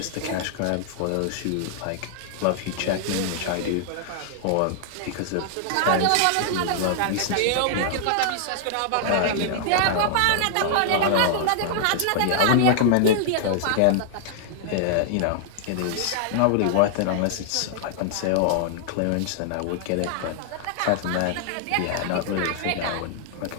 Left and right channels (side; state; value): both; different; correlation -0.01